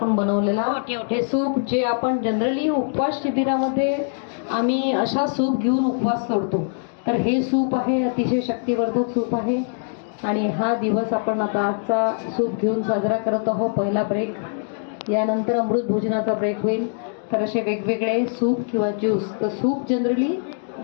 बनवलेला हे सूप, जे आपण जनरली उपवास शिबिरामध्ये आम्ही अशा सूप घेऊन उपवास सोडतो, तर हे सूप आहे अतिशय शक्तिवर्धक सूप आहे। आणि हा दिवस आपण आता आजचा सूप घेऊन साजरा करत आहोत। पहिला ब्रेक, यानंतर अमृत भोजनाचा ब्रेक होईल। तर असे वेगवेगळे सूप किंवा ज्यूस, तर सूप जनरली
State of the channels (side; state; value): right; silent; digital silence